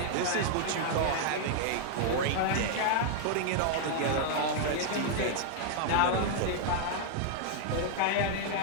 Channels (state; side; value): different; both; correlation -0.01